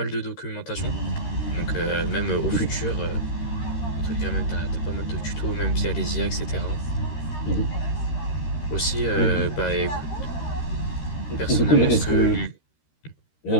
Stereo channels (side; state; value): right; late; 13 ms